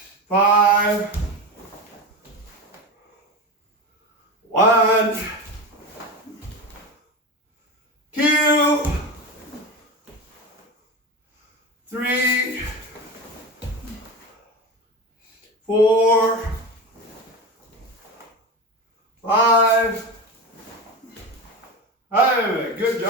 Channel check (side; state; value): both; normal; correlation 0.23